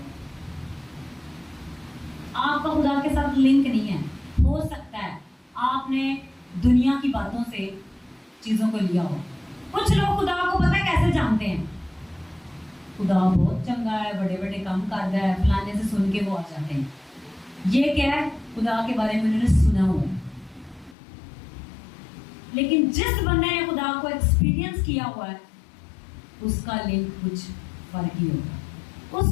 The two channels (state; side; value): drops out; right; at 21.0 s